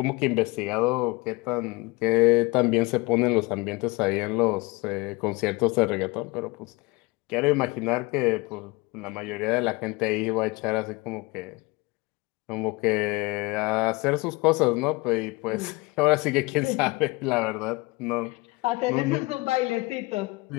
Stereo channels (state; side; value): quieter; right; 24.4 dB